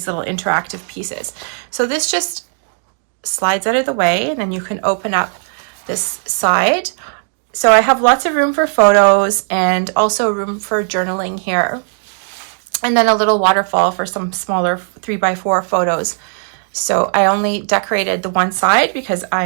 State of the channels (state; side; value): silent; left; 62 dB below the other